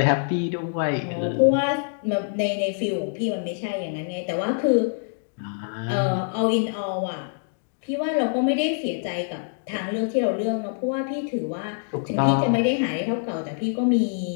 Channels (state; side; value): silent; right; digital silence